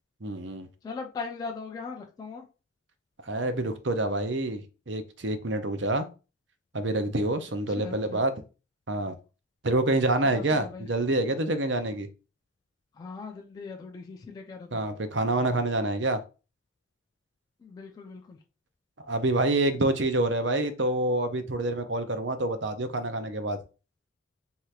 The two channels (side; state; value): both; normal; correlation 0.04